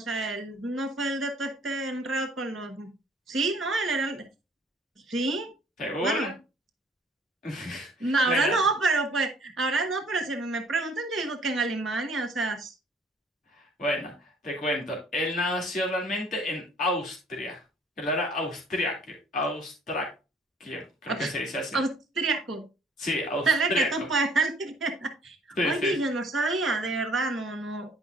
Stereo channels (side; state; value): both; normal; correlation 0.57